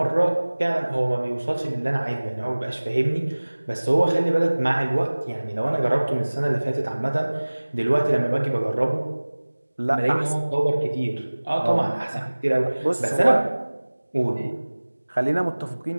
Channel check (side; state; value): both; inverted; correlation -1.00